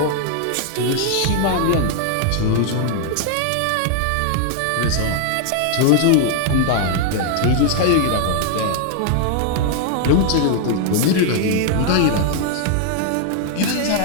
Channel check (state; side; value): different; both; correlation 0.00